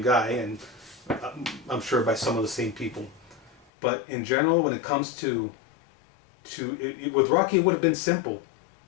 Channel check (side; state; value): right; drops out; at 3.7 s